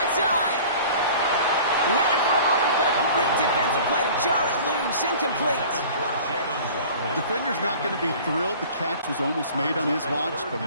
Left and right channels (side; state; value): both; inverted; correlation -0.44